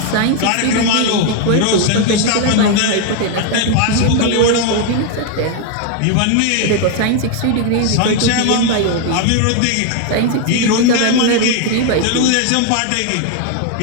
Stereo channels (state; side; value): different; both; correlation 0.01